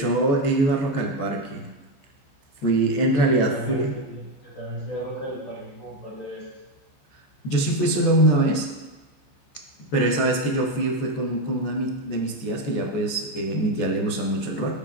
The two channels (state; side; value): late; right; 14 ms